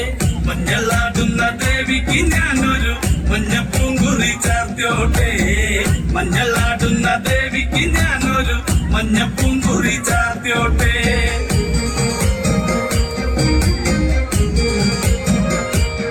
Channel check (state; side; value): identical; both; correlation 1.00